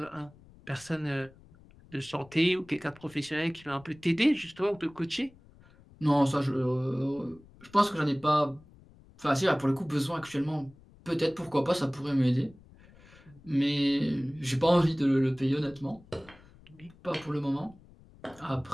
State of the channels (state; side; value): noise; left; rumble, 25 dB below the sound